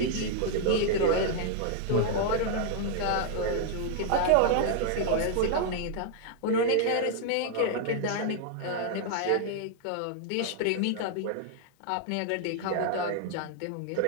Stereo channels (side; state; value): both; different; correlation 0.00